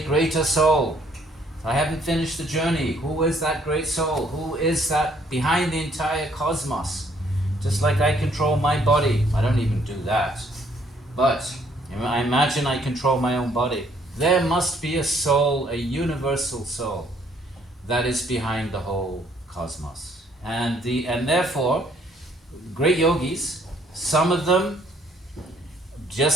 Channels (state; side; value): normal; both; correlation 0.65